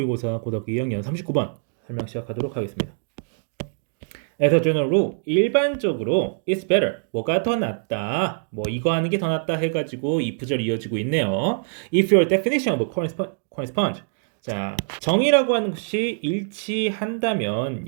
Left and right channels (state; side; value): silent; left; digital silence